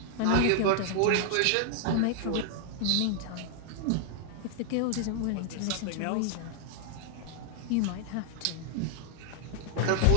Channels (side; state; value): both; different; correlation 0.00